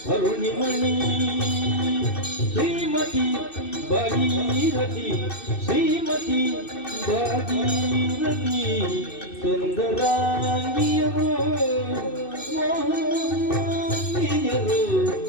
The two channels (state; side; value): late; right; 2.6 ms